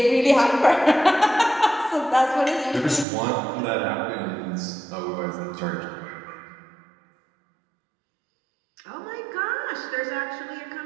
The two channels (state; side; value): drops out; left; at 3.1 s